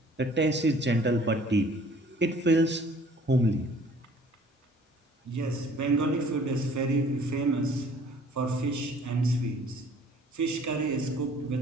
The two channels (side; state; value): both; normal; correlation 0.54